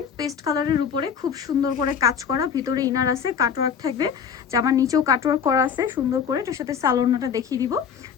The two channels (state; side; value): quieter; right; 7.3 dB